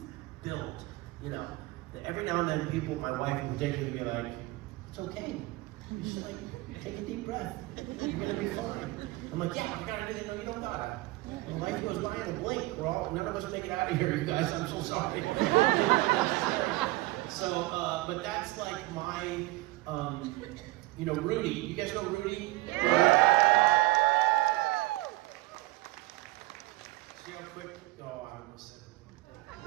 build. Every now and then people, my wife in particular, will be like, it's okay. You just take a deep breath. You're gonna be fine. I'm like, yeah, I gotta do that. No, you don't gotta. And life goes by in a blink. None of us make it out of here, you guys. I'm so sorry. So, but that's like my, Rudy. You guys know Rudy? Yeah. See how quick? Oh, I almost said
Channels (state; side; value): quieter; left; 19.7 dB